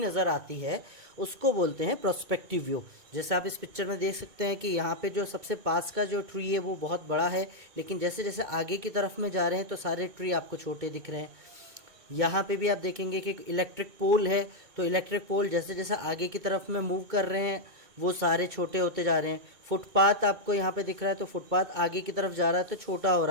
आती है उसको बोलते हैं पर्सपेक्टिव व्यू। जैसे आप इस पिक्चर में देख सकते हैं कि यहाँ पे जो सबसे पास का जो ट्री है वो बहुत बड़ा है, लेकिन जैसे जैसे आगे की तरफ में जा रहे हैं तो सारे ट्री आपको छोटे दिख रहे हैं। यहाँ पे भी आप देखेंगे कि इलेक्ट्रिक पोल है, तो इलेक्ट्रिक पोल जैसे जैसे आगे की तरफ में मूव कर रहे हैं वो सारे छोटे होते जा रहे हैं। फुटपाथ आपको यहाँ पे दिख रहा है, तो फुटपाथ आगे की तरफ जा रहा है तो छोटा हो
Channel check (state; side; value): late; left; 2.2 ms